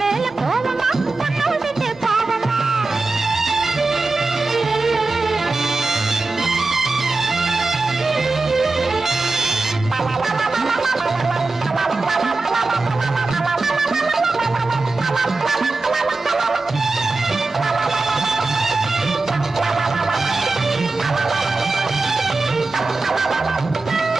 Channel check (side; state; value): left; quieter; 3.5 dB